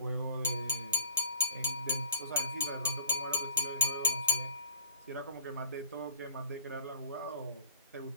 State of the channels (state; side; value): inverted; both; correlation -0.48